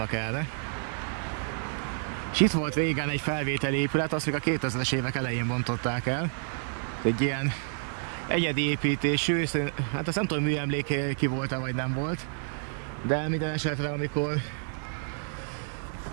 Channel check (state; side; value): silent; left; 58 dB below the other